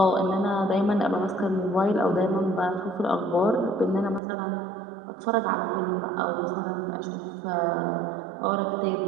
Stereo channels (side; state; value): left; drops out; at 4.2 s